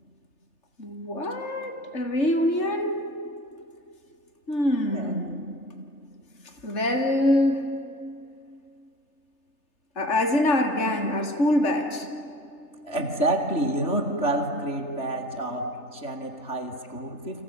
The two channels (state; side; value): late; right; 3.3 ms